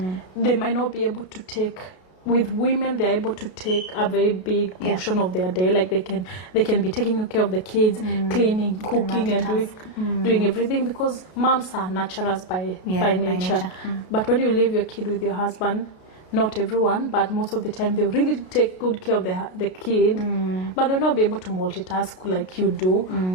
They might not be able to take. With women, they're able to take a very big portion of their day. Like they can be taking care of the kids, cleaning, cooking, and doing everything, because moms are nurturers by nature. But when you leave your kid with your husband, not everyone, but most of the time, they'll really take good care of the kid, but they'll not be able to multitask like you do.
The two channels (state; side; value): late; right; 33 ms